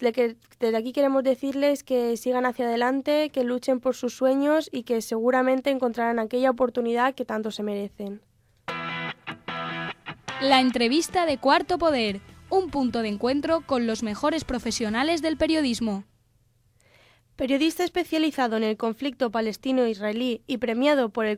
aquí queremos decirles que sigan hacia adelante, que luchen por sus sueños y que seguramente encontrarán aquella oportunidad que tanto se merecen. La entrevista de Cuarto Poder, un punto de encuentro con los mejores profesionales del periodismo. Periodista especializado en el conflicto palestino-israelí y premiado por el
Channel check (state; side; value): identical; both; correlation 1.00